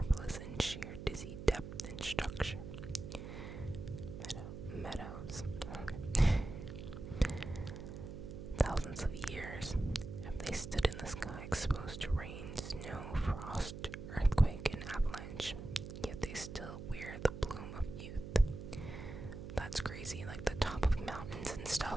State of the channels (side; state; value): right; noise; hum, 9 dB below the sound